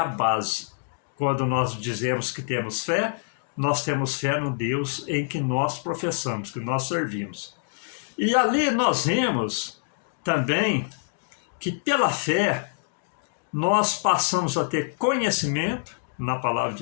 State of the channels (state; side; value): silent; right; digital silence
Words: base. Quando nós dizemos que temos fé, nós temos fé no Deus em que nós professamos, que nós servimos. E ali nós vemos também que pela fé nós passamos a ter conhecimento na palavra